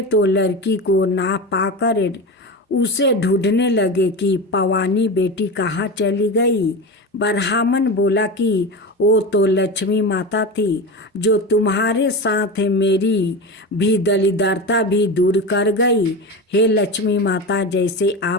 तो लड़की को ना पाकर उसे ढूंढने लगे कि पवानी बेटी कहाँ चली गई। ब्राह्मण बोला कि वो तो लक्ष्मी माता थी, जो तुम्हारे साथ मेरी भी दलिद्रता भी दूर कर गई। हे लक्ष्मी माता, जैसे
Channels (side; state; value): both; normal; correlation 0.24